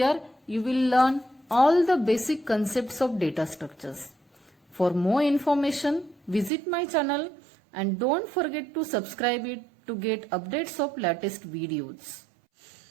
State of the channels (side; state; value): left; drops out; at 6.5 s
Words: you will learn all the basic concepts of data structures. For more information, visit my channel and don't forget to subscribe it to get updates of latest videos.